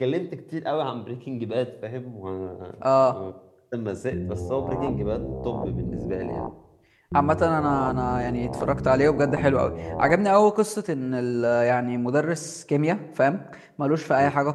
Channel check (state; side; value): identical; both; correlation 1.00